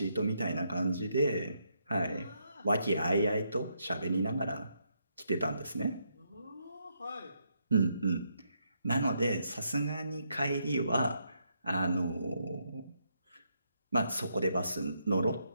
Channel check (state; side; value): inverted; both; correlation -0.77